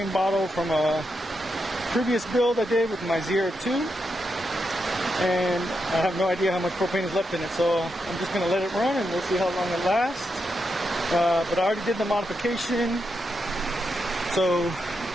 bottle from a previous build I did with my Zero 2. And I have no idea how much propane is left in it, so I'm just going to let it run and we'll see how long it lasts. But I already did the modification, so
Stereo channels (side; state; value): both; normal; correlation 0.84